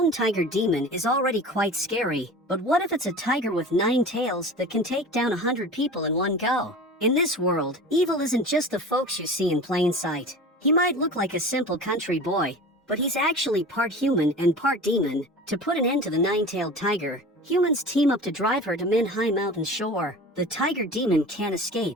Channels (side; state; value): both; normal; correlation 0.36